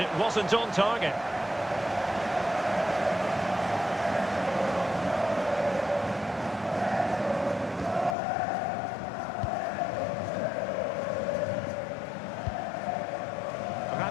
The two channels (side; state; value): right; drops out; at 8.2 s